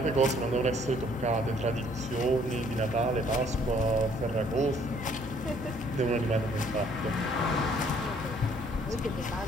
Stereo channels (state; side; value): normal; both; correlation 0.62